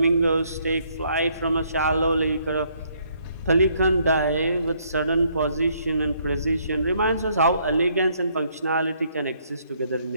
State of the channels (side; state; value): both; inverted; correlation -0.68